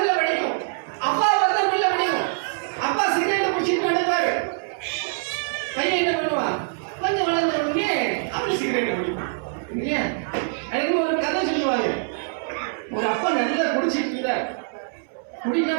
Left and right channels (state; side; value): silent; left; 63 dB below the other